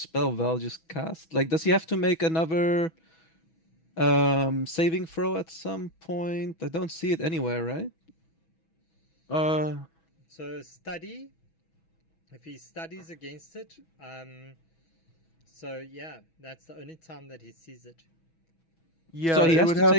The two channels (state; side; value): late; right; 6.1 ms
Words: Val just cast. Like, does he have to make another saving throw at some point? I don't see it anywhere, right? So study. If he studies against it, so yeah, that's the only time that he sees it. Yeah, So he it has would to have